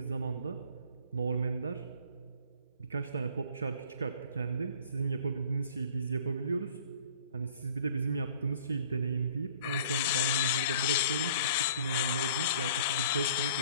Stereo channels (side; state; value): both; inverted; correlation -0.51